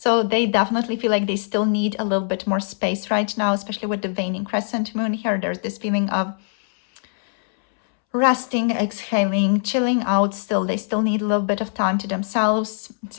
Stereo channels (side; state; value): right; silent; 64 dB below the other